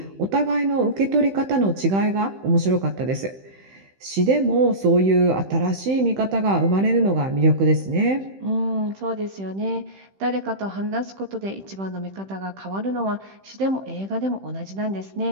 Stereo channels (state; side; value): late; left; 15 ms